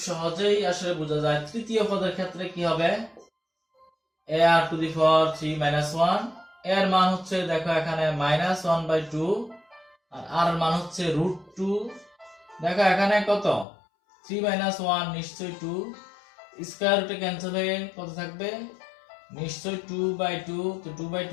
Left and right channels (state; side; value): drops out; right; at 13.7 s